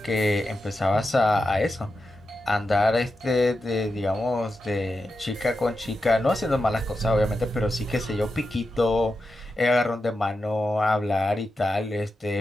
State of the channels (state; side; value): normal; both; correlation 0.89